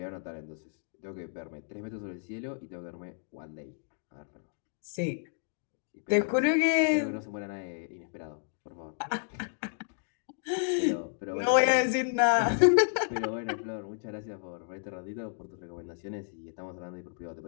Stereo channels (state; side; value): silent; right; digital silence